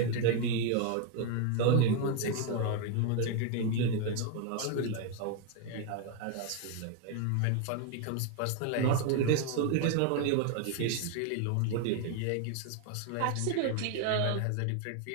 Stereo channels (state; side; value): different; both; correlation 0.01